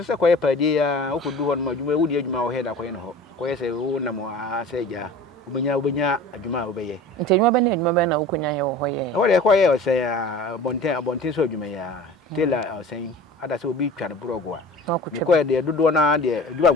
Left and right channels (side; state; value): both; normal; correlation 0.40